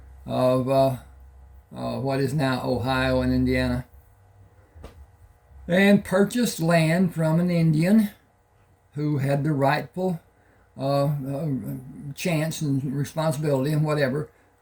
of what is now Ohio and Indiana, and purchased land from an Indian who had the rightful chance and responsibility and whatever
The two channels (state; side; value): identical; both; correlation 1.00